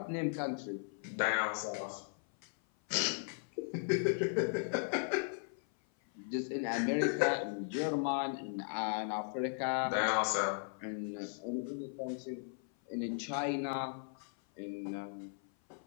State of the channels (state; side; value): silent; right; 53 dB below the other